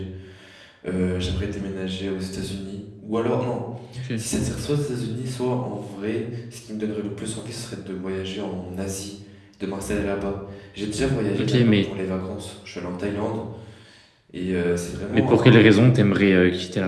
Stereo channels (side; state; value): both; identical; correlation 1.00